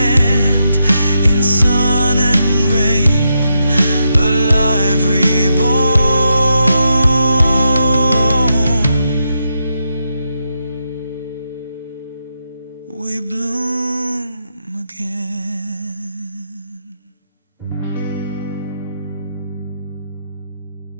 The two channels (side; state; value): both; inverted; correlation -0.83